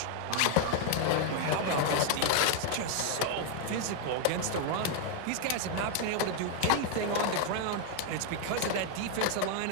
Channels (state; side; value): different; both; correlation 0.00